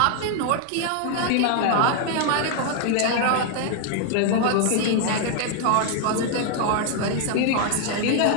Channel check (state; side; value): different; both; correlation 0.00